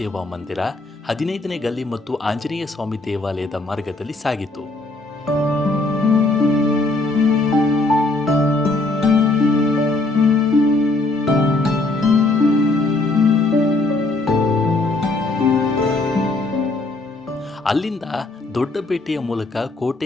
ಮಂದಿರ, 15ನೇ ಗಲ್ಲಿ ಮತ್ತು ಆಂಜನೇಯ ಸ್ವಾಮಿ ದೇವಾಲಯದ ಮಾರ್ಗದಲ್ಲಿ ಸಾಗಿತು. ಅಲ್ಲಿಂದ ದೊಡ್ಡಪೇಟೆಯ ಮೂಲಕ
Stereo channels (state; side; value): quieter; right; 3.1 dB